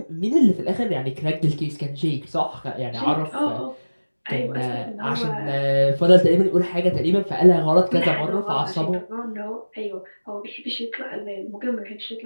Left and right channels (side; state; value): both; inverted; correlation -1.00